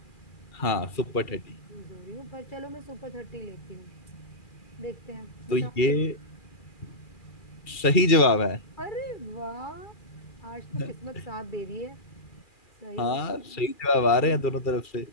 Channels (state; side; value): late; right; 2.4 ms